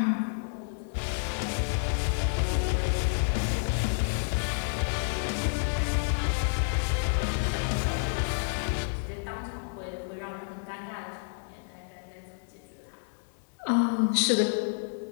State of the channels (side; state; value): right; silent; digital silence